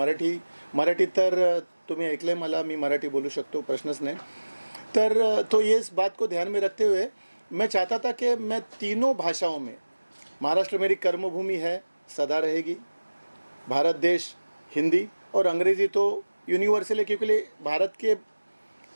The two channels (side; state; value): both; inverted; correlation -1.00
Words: मराठी तर तुम्ही ऐकलंय मला, मी मराठी बोलू शकतो, प्रश्नच नाही। तर तो ये इस बात को ध्यान में रखते हुए मैं चाहता था कि मैं तीनों भाषाओं में, महाराष्ट्र मेरी कर्मभूमि है, सदा रहेगी, भारत देश हिंदी, और अंग्रेज़ी तो यूनिवर्सल है, क्योंकि भारत के